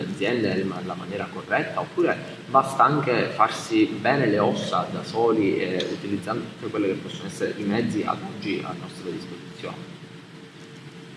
aziende nella maniera corretta, oppure basta anche farsi bene le ossa da soli utilizzando tutte quelle che possono essere i mezzi ad oggi a nostra disposizione?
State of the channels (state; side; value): identical; both; correlation 1.00